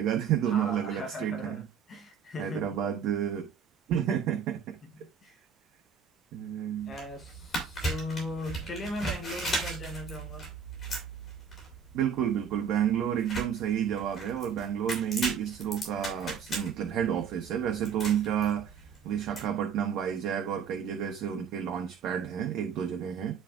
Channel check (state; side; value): quieter; left; 6.9 dB